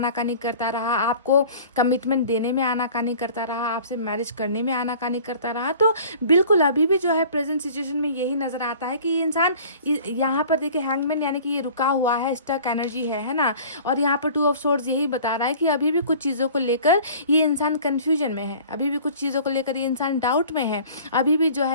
करता रहा, आपको कमिटमेंट देने में आनाकानी करता रहा, आपसे मैरिज करने में आनाकानी करता रहा। तो बिल्कुल अभी भी जो है प्रेजेंट सिचुएशन में यही नज़र आता है कि ये इंसान यहाँ पर देखिए हैंगमैन, यानी कि ये रुका हुआ है, स्टक एनर्जी है ना। और यहाँ पर 2 ऑफ सोर्ड्स यही बता रहा है कि अभी भी कुछ चीज़ों को लेकर ये इंसान कन्फ्यूजन में है, अभी भी कुछ चीज़ों को लेकर लेकर ये इंसान डाउट में है, अभी भी जो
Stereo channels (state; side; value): inverted; both; correlation -0.46